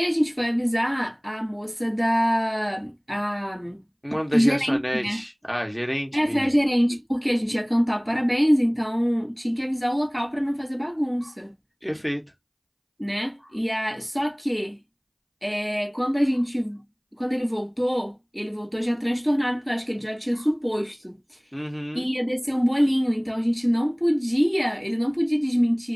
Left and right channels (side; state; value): both; identical; correlation 1.00